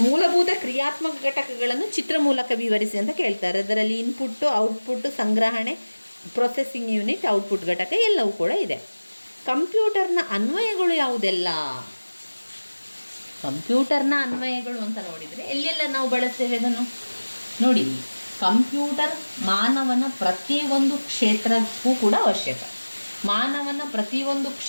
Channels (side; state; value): both; inverted; correlation -1.00